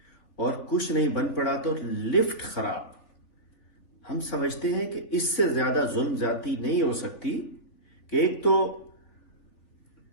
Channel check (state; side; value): late; right; 3.4 ms